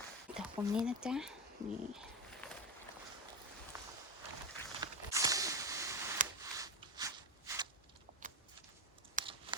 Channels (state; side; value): normal; both; correlation 0.14